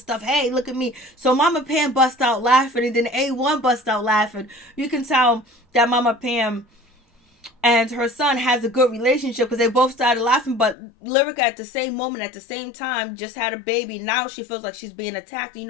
Hey, look at me. So Mama Pam bust out laughing, and then A1 bust out laughing. You can tell that Mama Pam and her son has a good relationship because they both started laughing. But Lyrica at the same moment, at the same time, just had a baby. Now she feels like she's being attacked. You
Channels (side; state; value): right; drops out; at 10.8 s